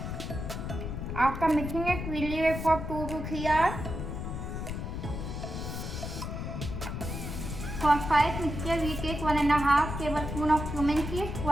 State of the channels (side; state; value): left; noise; rumble, 5 dB below the sound